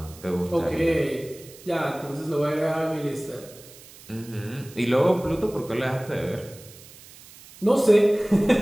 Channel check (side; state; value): right; noise; hiss, 20 dB below the sound